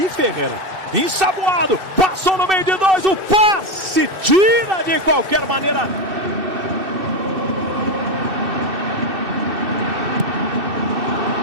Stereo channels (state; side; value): late; left; 2.6 ms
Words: Ensaboado. Passou no meio de 2. O passe. Tira de qualquer maneira.